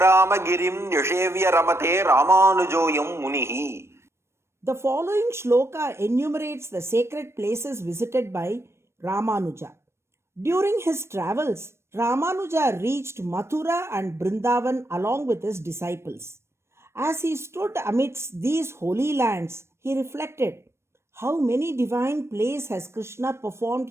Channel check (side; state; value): left; late; 0.13 ms